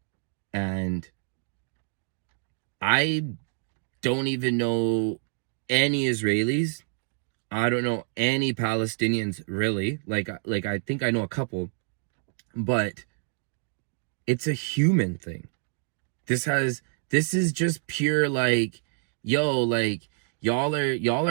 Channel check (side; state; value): left; silent; 60 dB below the other